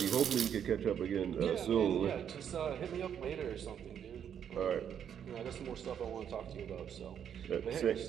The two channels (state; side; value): quieter; left; 8.7 dB